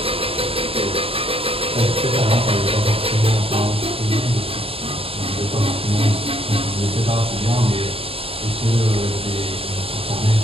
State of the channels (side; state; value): left; late; 0.27 ms